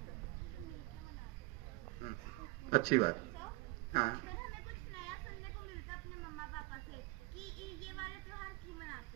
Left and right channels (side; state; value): left; quieter; 23.3 dB